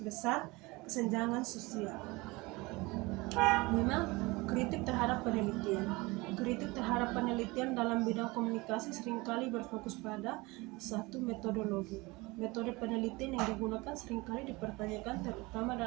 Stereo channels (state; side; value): quieter; left; 23.2 dB